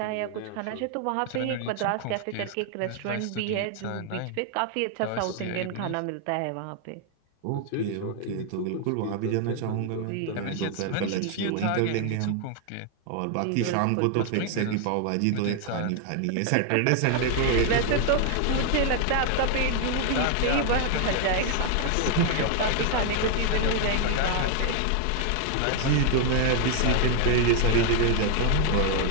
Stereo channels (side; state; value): both; different; correlation 0.00